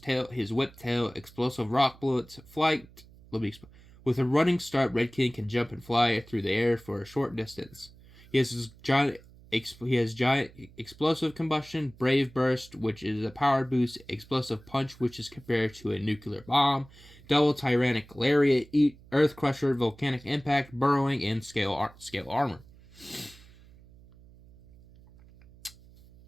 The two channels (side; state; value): right; noise; hum, 23 dB below the sound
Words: whip tail, explosive rock bullets, flight. With a running start, Red King can jump and fly through the air for a short distance. He has giant explosive combustion, brave burst, which is a power boost, explosive punch, which is compared to a nuclear bomb, double tyrannic lariat, earth crusher, volcanic impact, burrowing, and scale armor.